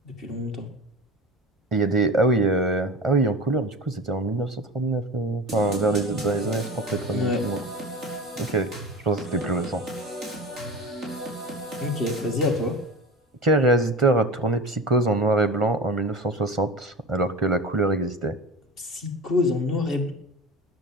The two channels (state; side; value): normal; both; correlation 0.32